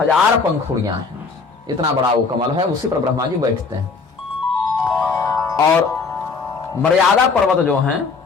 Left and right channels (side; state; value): right; quieter; 4.6 dB